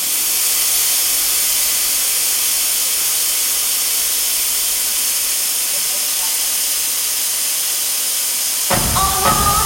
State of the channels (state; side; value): identical; both; correlation 1.00